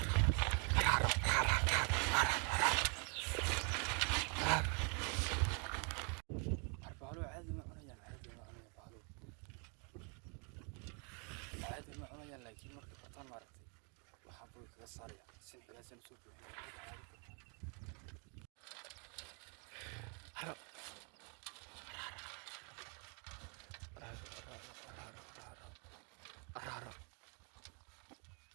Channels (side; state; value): left; quieter; 36.5 dB